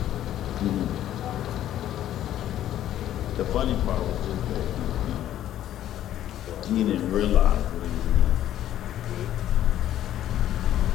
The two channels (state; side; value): quieter; right; 12.0 dB